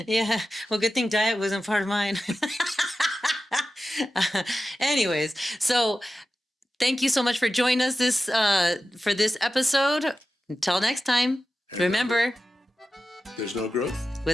Yeah. Well, good thing diet wasn't part of mine. Anyways, so thank you so much for joining us for this episode. Until next time, And remember, there's no growth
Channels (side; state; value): both; normal; correlation 0.93